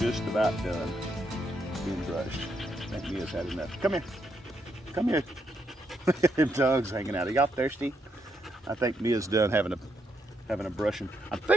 about done being brushed. I think Mia's had enough. Come here. Come here. Them dogs hanging out. Are y'all thirsty? I think Mia's done having a brushing. I'm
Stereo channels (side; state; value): both; normal; correlation 0.78